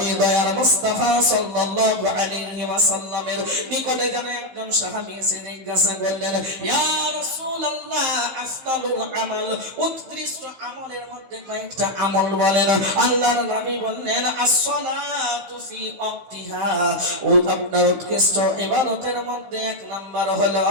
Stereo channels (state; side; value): late; left; 15 ms